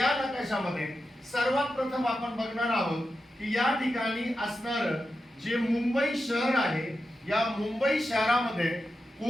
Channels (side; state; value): both; normal; correlation 0.90